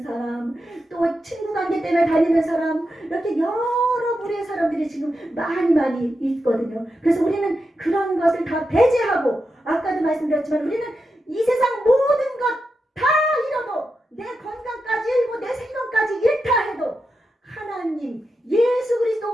사람 또 친구 관계 때문에 다니는 사람 이렇게 여러 부류의 사람들이 지금 많이 있거든요. 그래서 우리는 그런 것을 다 배제하고 아까도 말씀드렸지만 우리는 이 세상 모든 것 다 잃어도 내 건강까지 잃고 내 생명까지 잃다 해도 하나님 예수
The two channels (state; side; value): normal; both; correlation 0.88